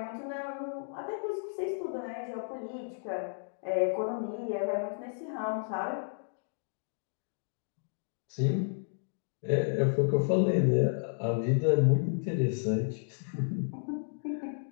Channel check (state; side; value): silent; right; digital silence